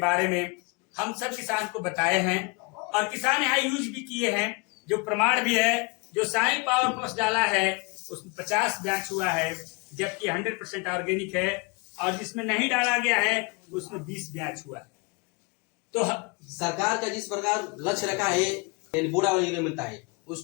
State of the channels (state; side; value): quieter; right; 29.0 dB